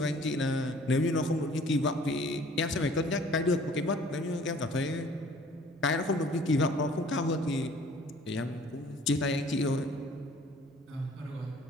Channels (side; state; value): both; normal; correlation 0.53